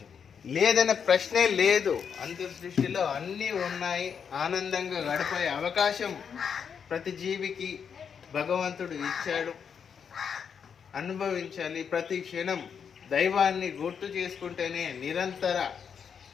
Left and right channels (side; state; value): right; quieter; 7.0 dB